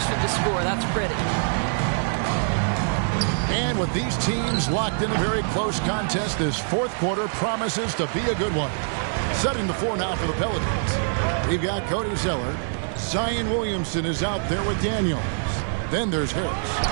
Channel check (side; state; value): left; silent; digital silence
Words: to score. That's pretty. And with these teams locked in a very close contest, this fourth quarter promises to be a good one. Setting the floor now for the Pelicans. We've got Cody Zeller. Zion Williamson is out there with Daniels. Then there's Harris.